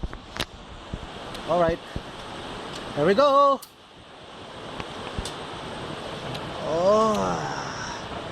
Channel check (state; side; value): identical; both; correlation 1.00